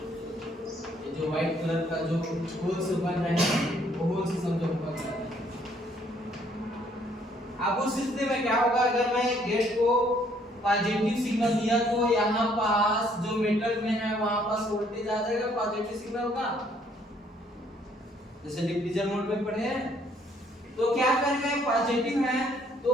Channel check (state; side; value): normal; both; correlation 0.65